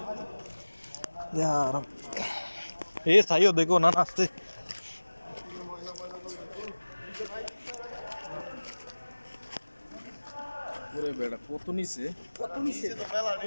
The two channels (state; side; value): inverted; both; correlation -1.00